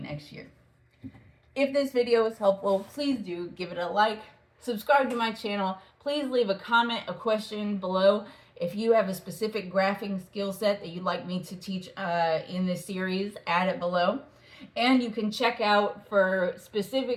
year. If this video was helpful, please do give it a like, subscribe to my channel. Please leave a comment, a question below. If you have a specific graphing skill set that you'd like me to teach in this series, add it below. And you can check out for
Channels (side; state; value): both; identical; correlation 1.00